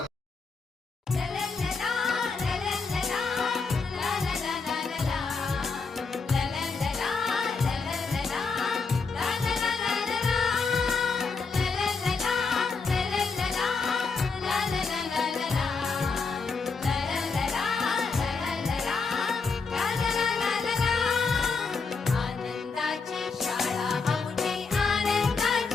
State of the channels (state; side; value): quieter; right; 4.6 dB